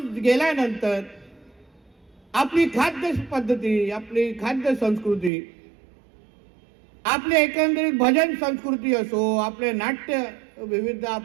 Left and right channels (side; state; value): left; drops out; at 5.3 s